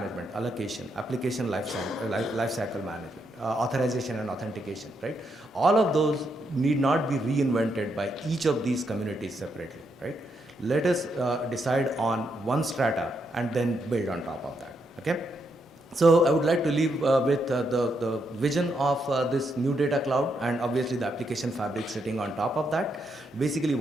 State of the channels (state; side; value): normal; both; correlation 0.79